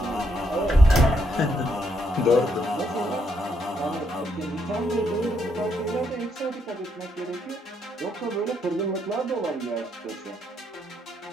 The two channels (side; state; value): both; normal; correlation 0.76